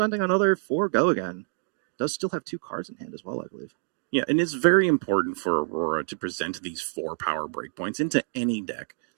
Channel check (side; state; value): left; silent; digital silence